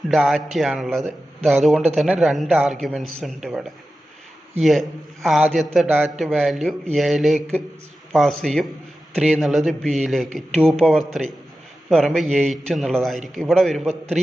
ഡാറ്റയാണുള്ളത്. അതുകൊണ്ട് തന്നെ 2 ആർഗ്യുമെൻറ്റ്സ് ഉണ്ട് ഇവിടെ. ആദ്യത്തെ ഡാറ്റ വാല്യൂ എയിലേക്ക് പാസ് ചെയ്യും, 3 എന്നുള്ളത് ബിയിലേക്ക്. 2⁻3 എന്ന് പറയുമ്പോൾ 8 എന്നുള്ളതായിരിക്കും. ഇവിടെ വരുമ്പോൾ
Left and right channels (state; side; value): normal; both; correlation 0.93